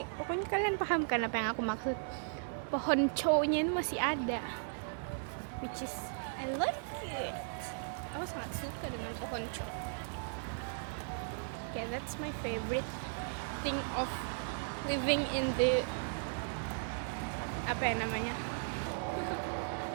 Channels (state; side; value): silent; left; digital silence